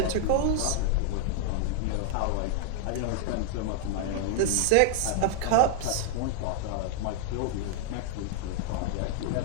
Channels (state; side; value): different; both; correlation -0.01